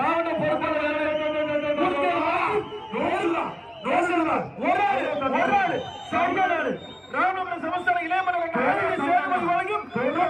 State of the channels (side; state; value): both; identical; correlation 1.00